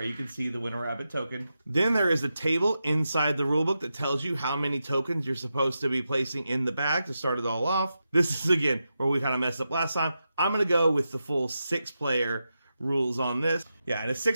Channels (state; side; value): inverted; both; correlation -0.89